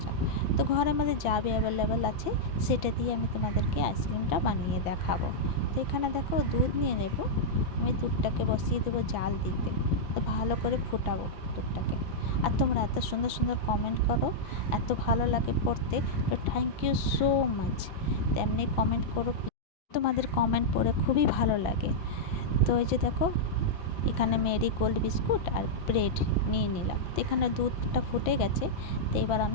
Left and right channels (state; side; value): late; right; 6.0 ms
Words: যাক। তো ঘরের মধ্যে যা অ্যাভেলেবেল আছে সেটা দিয়ে আমি তোমাদেরকে আইসক্রিমটা বানিয়ে দেখাবো। তো এখানে দেখো দুধ নিয়ে নেব। আমি দুধটাকে বসিয়ে দেবো জাল দিতে। তো ভালো করে ফুটাবো দুধটাকে। আর তোমরা এত সুন্দর সুন্দর কমেন্ট করো, এত ভালো লাগে পড়তে। তো থ্যাংক ইউ সো মাচ। তেমনি কমেন্ট করো, তোমাদের কমেন্ট পড়ে খুবই ভালো লাগে। তো এই যে দেখো, এখানে মেরি গোল্ড বিস্কুট আর ব্রেড নিয়ে নিলাম। তো এখানে দুধটা ফুটে গেছে। তো এবার